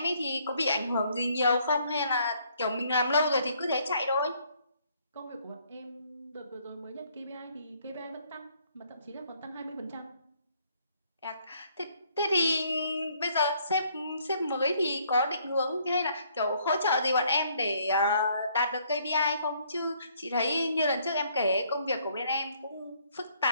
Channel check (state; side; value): inverted; both; correlation -0.66